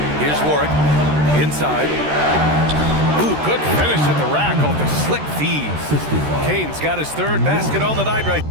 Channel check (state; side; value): late; left; 13 ms